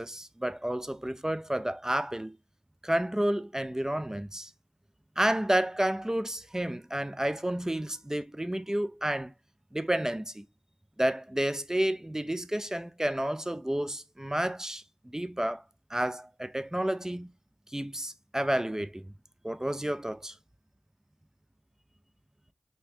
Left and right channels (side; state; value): both; normal; correlation 0.97